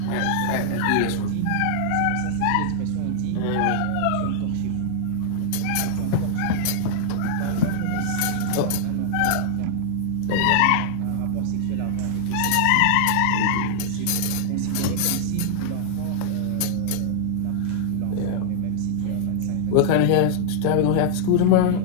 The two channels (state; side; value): different; both; correlation -0.01